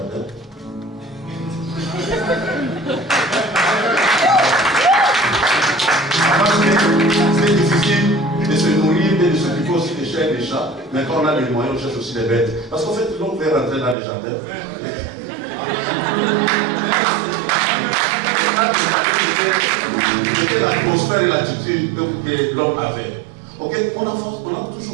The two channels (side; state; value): left; drops out; at 14.0 s